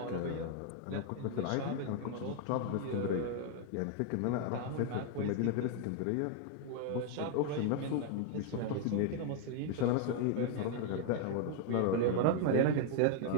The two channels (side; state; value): both; different; correlation 0.00